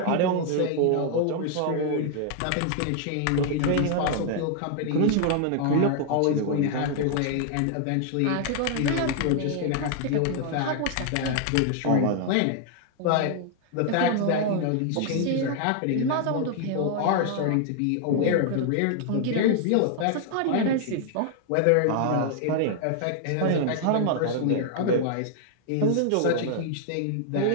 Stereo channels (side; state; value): both; different; correlation 0.00